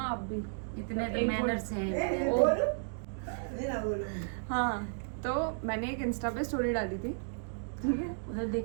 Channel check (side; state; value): left; silent; digital silence